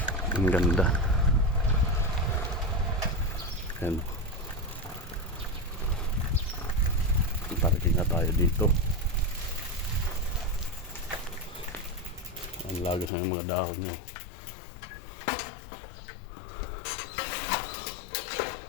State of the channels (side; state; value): right; drops out; at 13.1 s